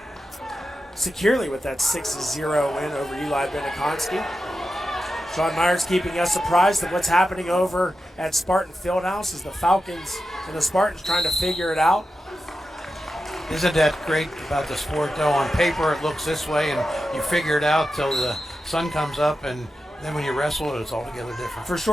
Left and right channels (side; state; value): both; normal; correlation 0.91